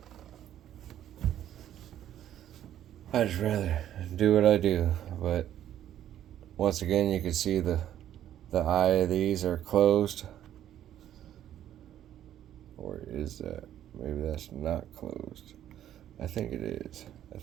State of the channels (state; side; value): quieter; left; 11.4 dB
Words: I just rather do what I do. But once again, you can see the eye of these are closed. Or is that? Maybe that's not closed. I think it is. I